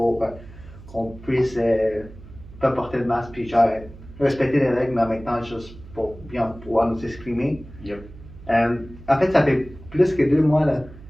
qu'on puisse pas porter le masque, puis genre respecter les règles, mais en même temps, juste pour bien pouvoir nous exprimer. Yep. En fait, ça fait plus que 2 mois là,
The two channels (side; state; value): right; noise; hum, 18 dB below the sound